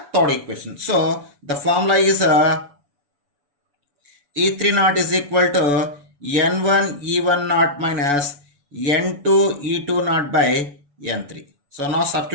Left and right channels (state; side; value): late; left; 6.9 ms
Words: third equation. So the formula is E3 naught is equal to N1 E1 naught minus N2 E2 naught by N3. So now